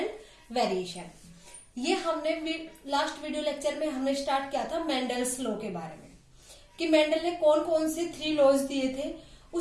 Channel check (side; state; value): both; identical; correlation 1.00